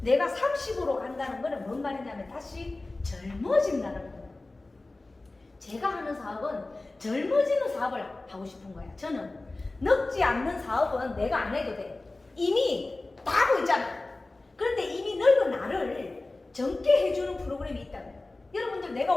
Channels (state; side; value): quieter; right; 3.1 dB